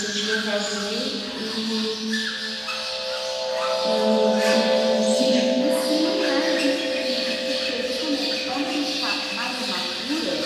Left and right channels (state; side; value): identical; both; correlation 1.00